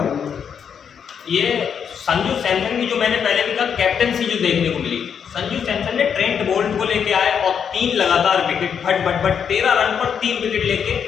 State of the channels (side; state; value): right; quieter; 7.4 dB